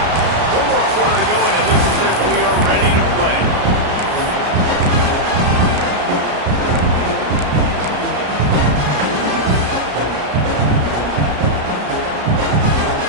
One more quarter to go, and it looks as if we are ready to play.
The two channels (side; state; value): left; late; 33 ms